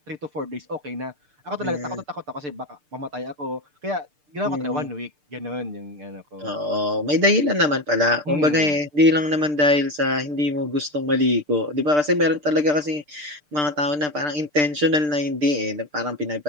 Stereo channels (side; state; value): left; late; 6.7 ms